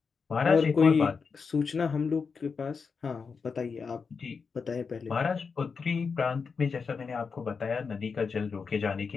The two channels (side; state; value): right; quieter; 5.3 dB